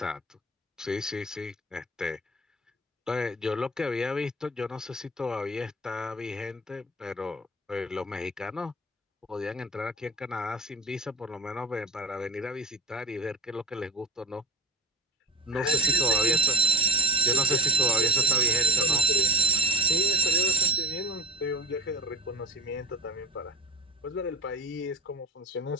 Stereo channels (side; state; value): both; normal; correlation 0.32